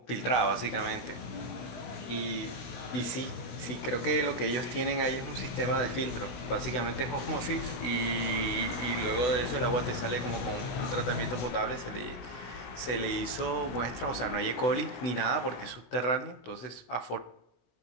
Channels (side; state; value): right; late; 16 ms